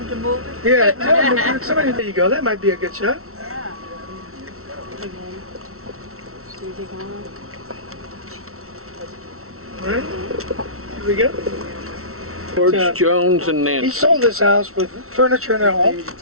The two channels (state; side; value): late; left; 0.63 ms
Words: him to move it? Yeah, tell him, somebody, there you go. That might be a good shot. All right, here we go. George Jones and He Nancy. sold this house with furniture and all,